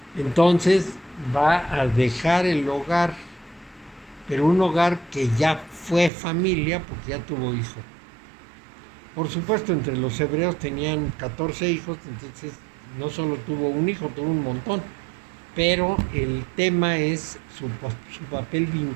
Entonces va a dejar el hogar, pero un hogar que ya fue familia porque ya tuvo hijo. Por supuesto, entre los hebreos tenían 14 hijos, entonces no solo tuvo un hijo, tuvo un montón. Pero el tema es su papel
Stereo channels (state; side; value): drops out; left; at 6.1 s